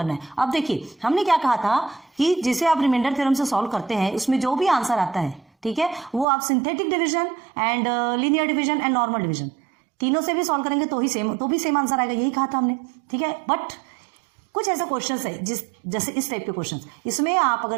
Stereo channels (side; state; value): left; drops out; at 6.2 s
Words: है। अब देखिए हमने क्या कहा था कि जिसे आप रिमाइंडर थ्योरम से सॉल्व करते हैं, उसमें जो भी आंसर आता है, ठीक है, वो आप synthetic division and linear division and normal division तीनों से भी सॉल्व करेंगे तो भी सेम आंसर आएगा, यही कहा था हमने। ठीक है, बट कुछ ऐसे क्वेश्चंस है जैसे इस टाइप के क्वेश्चंस, इसमें आप